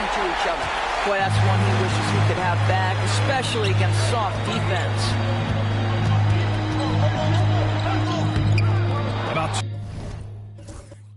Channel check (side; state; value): both; identical; correlation 1.00